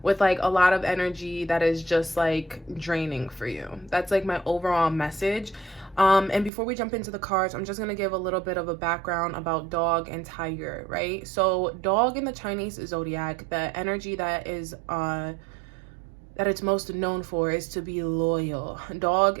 with a lot of energy that is just draining for you. That's my overall message. And before we jump into the cards, I'm just going to give a little bit of a background about dog and tiger, right? So dog in the Chinese zodiac, the energy that it's most known for is to be loyal. Dog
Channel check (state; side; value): drops out; left; at 6.5 s